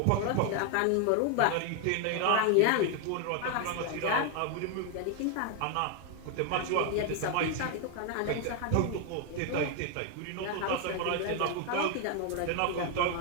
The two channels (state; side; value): different; both; correlation 0.01